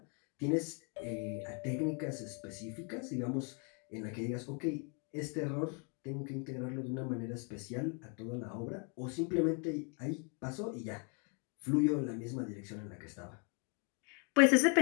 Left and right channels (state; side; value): quieter; right; 37.7 dB